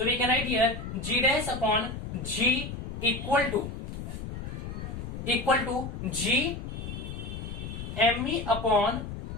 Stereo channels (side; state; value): left; noise; rumble, 7 dB below the sound